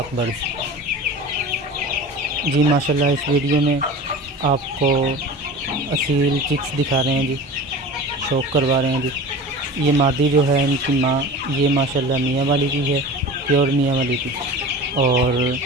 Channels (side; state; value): both; normal; correlation 0.36